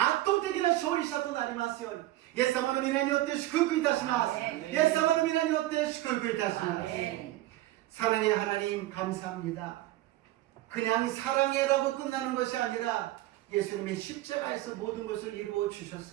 倒的な勝利者となりますように、イエス様の皆によって祝福いたします。イエス様の皆によって祝福いたします。 사랑의 하나님 감사합니다. 그냥 사랑해라고 끝나는 것이 아니라 예수님의 십자가에서 모든 것을 이루어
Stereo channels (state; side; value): quieter; left; 16.0 dB